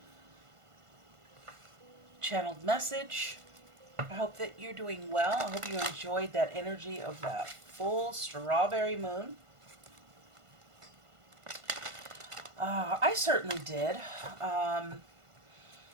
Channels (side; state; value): left; late; 1.5 ms